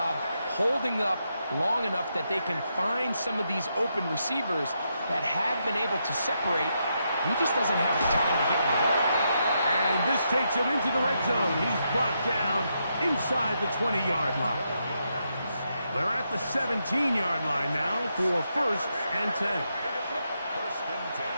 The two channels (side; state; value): both; inverted; correlation -0.81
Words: holding up long enough that they can find some of these open receivers that have been able to separate. He just doesn't have the time to get on the ball. And this takes him into the red zone. He's brought down inside the 20-yard line. They're at the 17-yard line now for first and 10.